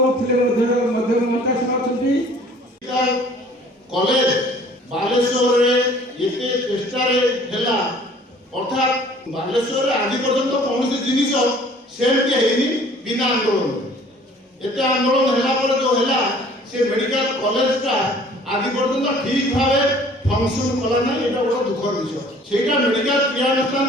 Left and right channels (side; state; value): both; normal; correlation 0.52